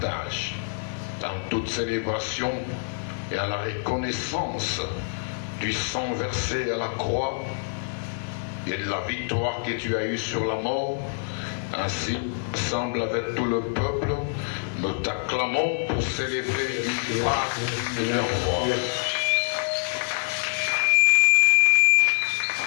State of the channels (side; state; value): right; silent; digital silence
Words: dans toute célébration et à la reconnaissance du sang versé à la croix et de la victoire que tu as eue sur la mort. Ainsi, ensemble avec tout le peuple, nous t'acclamons pour célébrer la victoire de leur roi.